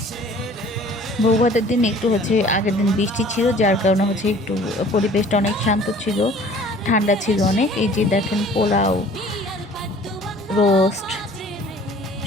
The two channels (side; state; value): both; normal; correlation 0.51